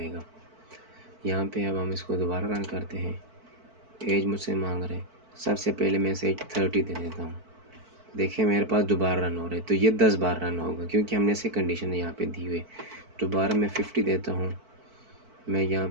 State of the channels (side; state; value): left; late; 4.5 ms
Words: यहाँ पे अब हम इसको दोबारा रन करते हैं। एज मुझसे मांग रहे हैं, सबसे पहले मैं इसे 30 दे देता हूँ। देखिए मेरे पास दोबारा रन हो रहे, तो ये 10 बार रन होगा क्योंकि हमने इसे कंडीशन यहाँ पे दी हुई है। दोबारा मैं 50 देता हूँ, मैं यहाँ